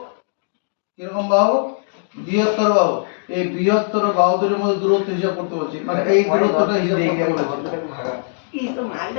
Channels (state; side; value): silent; right; digital silence